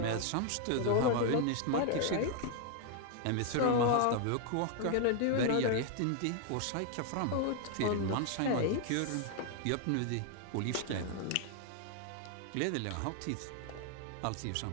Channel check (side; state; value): both; different; correlation 0.00